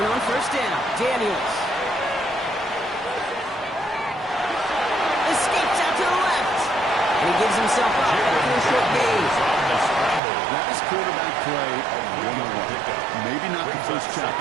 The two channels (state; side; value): drops out; left; at 10.2 s